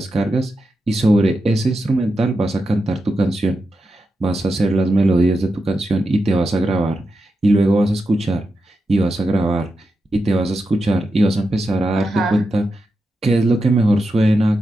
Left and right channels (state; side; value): normal; both; correlation 0.88